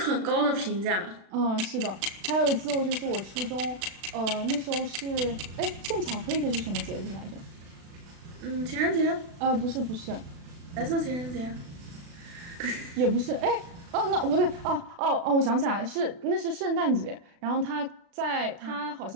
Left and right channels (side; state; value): left; late; 36 ms